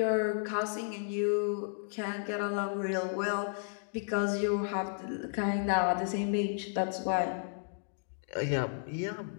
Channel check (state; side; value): silent; right; digital silence